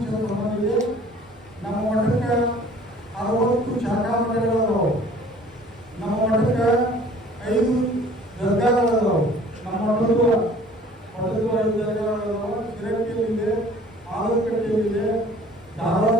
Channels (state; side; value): normal; both; correlation 0.51